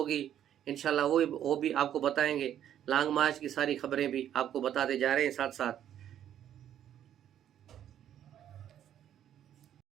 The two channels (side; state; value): left; quieter; 10.5 dB